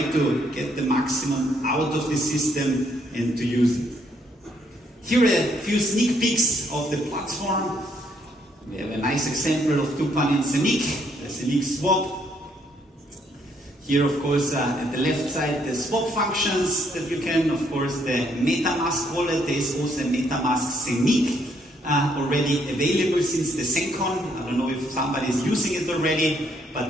to get the maximum out of the system and to use it. Here are a few sneak peeks of the platform. We have a nice example of Tupan and Zeniq, the Zeniq swap. Here, of course, at the left side, the swap functions that you can, of course, the MetaMask wallet. There is also a MetaMask Zeniq. Already available since the SENCon. I don't know if somebody is using it already, but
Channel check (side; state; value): both; normal; correlation 0.70